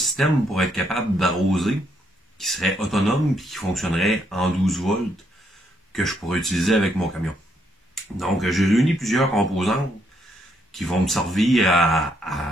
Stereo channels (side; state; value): both; normal; correlation 0.74